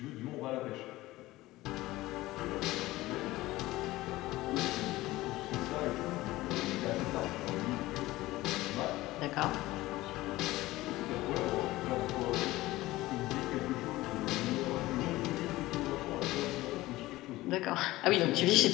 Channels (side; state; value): right; quieter; 18.0 dB